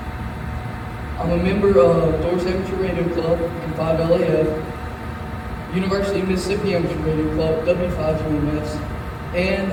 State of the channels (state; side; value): identical; both; correlation 1.00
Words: I'm a member of Doors Amateur Radio Club and 5LAF, University of Mississippi Amateur Radio Club, W5UMS, and